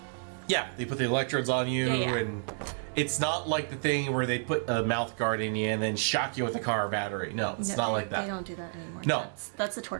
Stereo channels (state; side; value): silent; left; 58 dB below the other